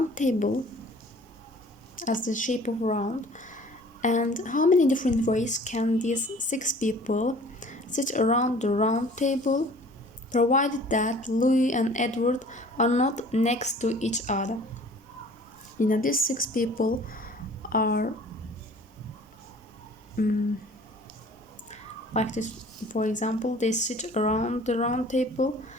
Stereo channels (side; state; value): both; normal; correlation 0.49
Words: table as the shape of round. And how many different ways can these 6 people sit around the round table, provided that Louis and Edward are not next to each other? These 6 people are like this. For example, they sit around the round table,